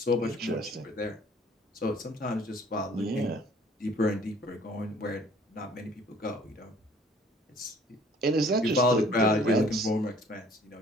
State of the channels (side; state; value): both; normal; correlation 0.55